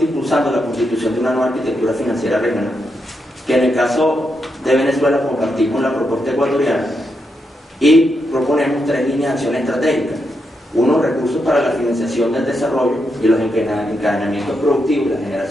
impulsando la constitución de una nueva arquitectura financiera regional, que en el caso de Venezuela compartimos la propuesta ecuatoriana y proponemos 3 líneas de acción estratégicas. 1, recursos para la financiación del desarrollo y los encadenamientos productivos, la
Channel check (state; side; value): normal; both; correlation 0.83